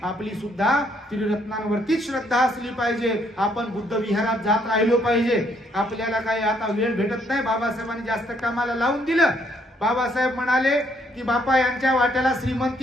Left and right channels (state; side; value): normal; both; correlation 0.69